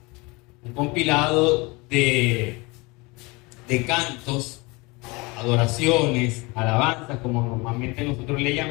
un compilado de cantos, adoraciones, alabanzas, como normalmente nosotros le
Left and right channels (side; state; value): right; quieter; 25.6 dB